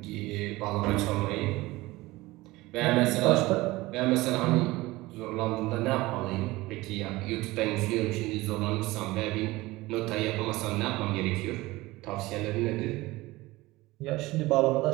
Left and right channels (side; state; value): left; quieter; 19.8 dB